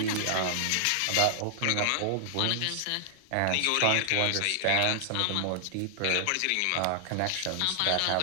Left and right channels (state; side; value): different; both; correlation -0.01